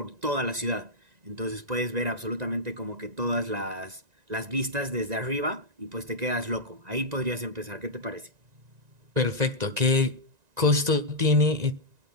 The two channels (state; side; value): late; left; 1.9 ms